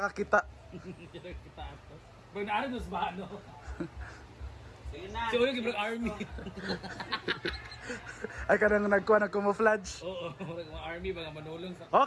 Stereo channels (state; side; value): identical; both; correlation 1.00